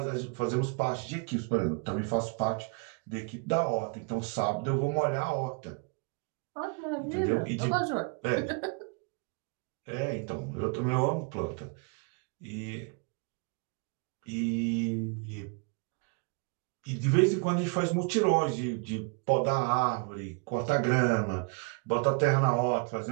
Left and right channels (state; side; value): quieter; left; 34.4 dB